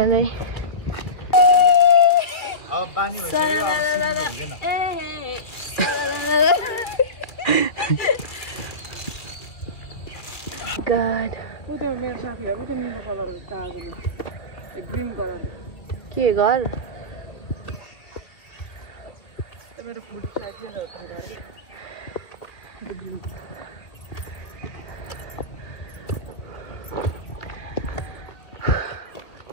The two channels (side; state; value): right; late; 2.3 ms